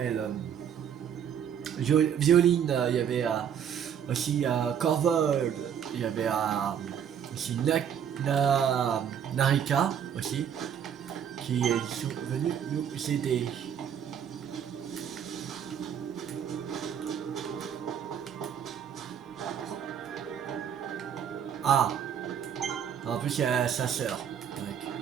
Violine, il y avait aussi Corvol, il y avait aussi Narika aussi, qui sont venus nous aider. Ah, en plus il y a sa sœur.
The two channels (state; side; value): quieter; left; 8.6 dB